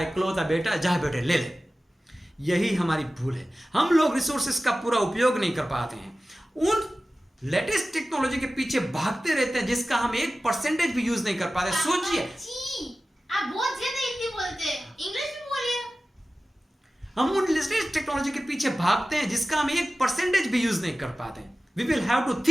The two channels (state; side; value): normal; both; correlation 0.96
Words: इकलौता बेटा, जा बेटे ले ले। यही हमारी भूल है, हम लोग रिसोर्सेस का पूरा उपयोग नहीं कर पाते हैं, उन लेटेस्ट टेक्नोलॉजी के पीछे भागते रहते हैं जिसका हम 1% भी यूज नहीं कर पाते। सोचिए, आप बहुत ज्यादा हिंदी बोलते हैं, इंग्लिश भी बोलिए। हम उन लेटेस्ट टेक्नोलॉजी के पीछे भागते हैं जिसका हम 1% भी यूज नहीं कर पाते। We will have to